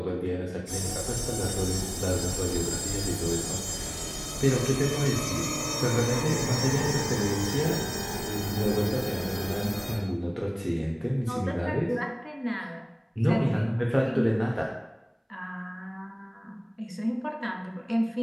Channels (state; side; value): identical; both; correlation 1.00